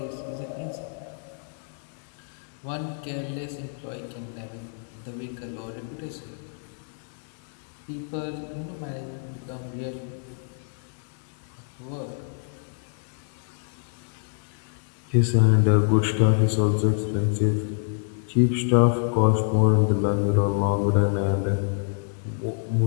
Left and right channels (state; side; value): silent; right; digital silence